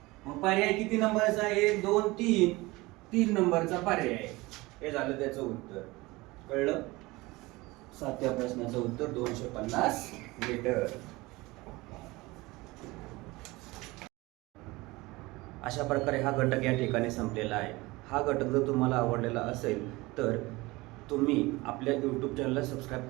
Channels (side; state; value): left; quieter; 21.7 dB